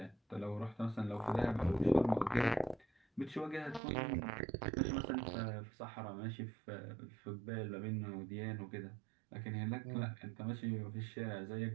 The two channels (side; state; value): left; drops out; at 3.8 s